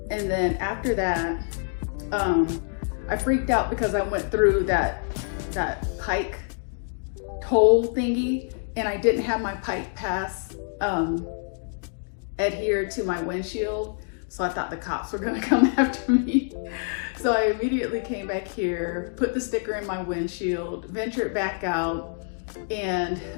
And then after that, I freaked out because I went through that pike toll thingy, and I didn't have my pike pass adhered to my windshield. So I thought the cops were gonna come after me. So I immediately came back here, put the sticker in my windshield, ventured back out. And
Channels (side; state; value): right; silent; 61 dB below the other